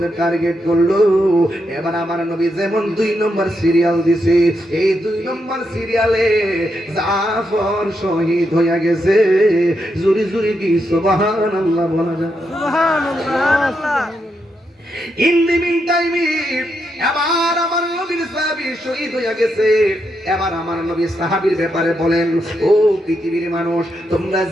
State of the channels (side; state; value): both; normal; correlation 0.82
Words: টার্গেট করলো। এবার আমার নবী যেমন 2 নম্বর সিরিয়াল দিছে, এই 2 নম্বর সিরিয়ালে জাফর শহীদ হইয়া গেছে। জুরি জুরি কি সুবহানাল্লাহ বলা যায়? সুবহানাল্লাহ। ইন দি মিন টাইমে এবার আমার নবীর সাহাবী শহীদ হইয়া গেছে। এবার আমার নবী সাহাবীর ব্যাপারে বলেন, ও পৃথিবীর মানুষ, তোমরা